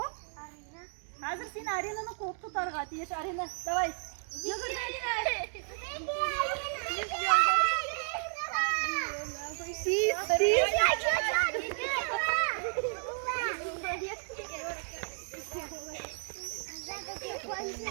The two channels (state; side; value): silent; left; 56 dB below the other